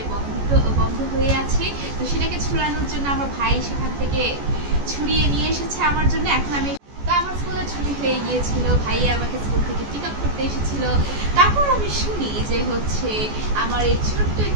বন্ধ হয়ে আছে। তো সেটাকে ছুড়ানোর জন্য আমার ভাই সেখান থেকে ছুড়িয়ে নিয়ে এসেছে আমার জন্য। এখন আমি আমার স্কুলে ছুটি হয়ে গিয়েছিল, ভাইয়া আমাকে স্কুল থেকে পিক আপ করতে এসেছিল। তারপর আমি শুনি যে আমার এই ছোট্ট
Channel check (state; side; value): late; left; 14 ms